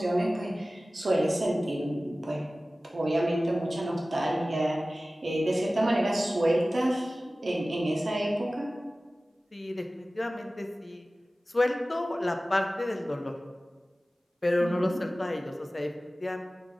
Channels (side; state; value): both; normal; correlation 0.97